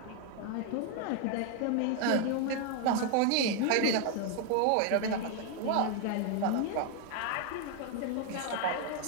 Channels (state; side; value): different; both; correlation 0.00